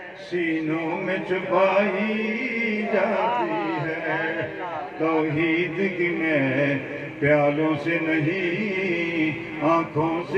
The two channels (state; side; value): identical; both; correlation 1.00